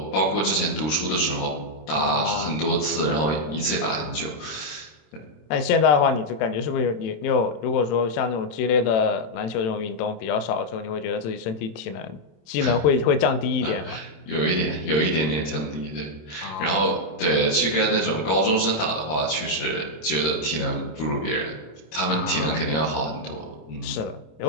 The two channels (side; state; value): right; late; 26 ms